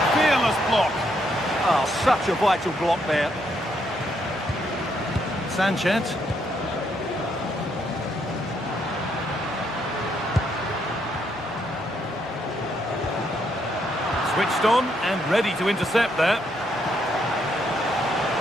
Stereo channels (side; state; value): both; normal; correlation 0.75